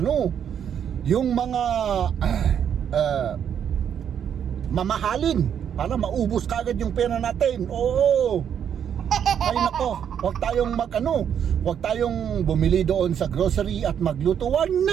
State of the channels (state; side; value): quieter; left; 8.6 dB